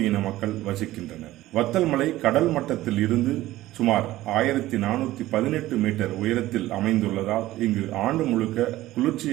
மக்கள் வசிக்கின்றனர். வத்தல் மலை கடல் மட்டத்தில் இருந்து சுமார் 1418 மீட்டர் உயரத்தில் அமைந்துள்ளதால் இங்கு ஆண்டு முழுக்க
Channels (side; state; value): left; quieter; 16.0 dB